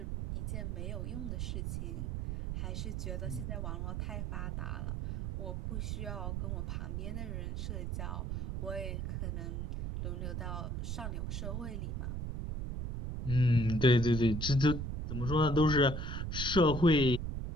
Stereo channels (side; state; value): right; noise; rumble, 3 dB below the sound